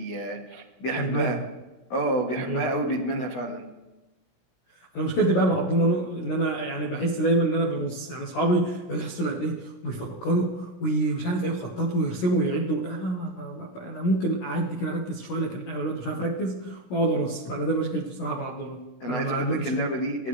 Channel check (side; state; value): right; late; 16 ms